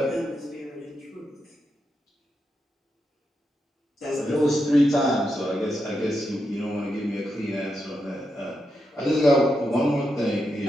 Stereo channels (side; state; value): both; normal; correlation 0.85